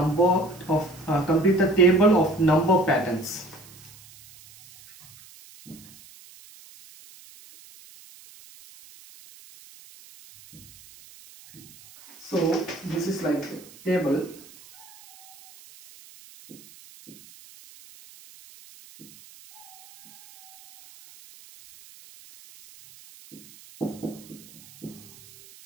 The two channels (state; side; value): noise; right; hiss, 22 dB below the sound